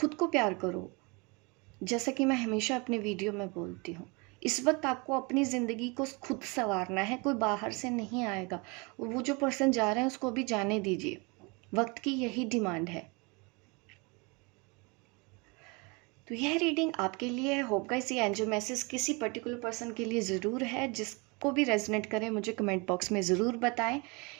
को प्यार करो, जैसा कि मैं हमेशा अपने वीडियो में बोलती हूँ इस वक्त आपको अपनी ज़िंदगी को खुद संवारना है, कोई बाहर से नहीं आएगा। वो जो पर्सन जा रहे हैं उसको भी जाने दीजिए, वक्त की यही डिमांड है। तो यह रीडिंग आपके लिए है। होप गाइस ये एंजल मैसेज किसी पर्टिकुलर पर्सन के लिए ज़रूर है। जिसको भी रेजोनेट करे मुझे कमेंट बॉक्स में ज़रूर बताएं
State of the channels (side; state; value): left; quieter; 29.0 dB